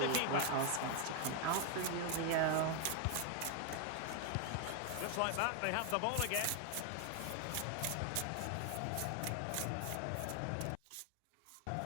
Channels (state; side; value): different; both; correlation 0.01